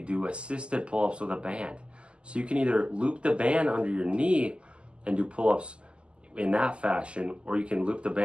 do assisted pull-ups with a band. So you can either loop the band under your knee and do pull-ups in that fashion, or you can loop the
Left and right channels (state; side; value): late; left; 0.053 ms